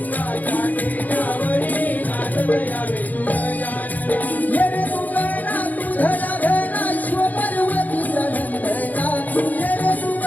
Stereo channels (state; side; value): late; right; 0.080 ms